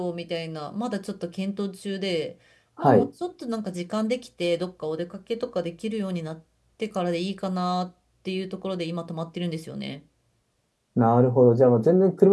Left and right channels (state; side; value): identical; both; correlation 1.00